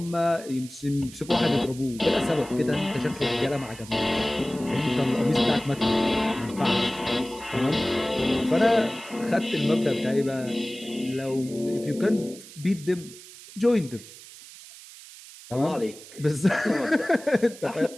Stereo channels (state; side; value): noise; right; hiss, 17 dB below the sound